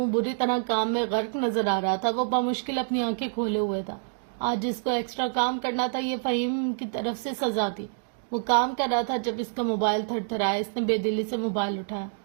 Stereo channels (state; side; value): silent; left; digital silence